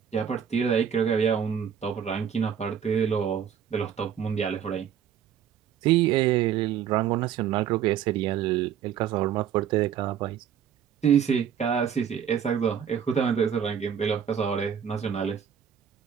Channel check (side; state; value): left; quieter; 8.6 dB